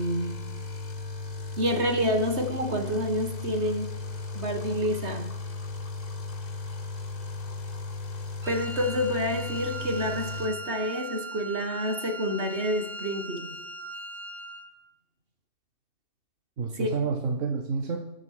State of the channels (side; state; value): left; late; 3.2 ms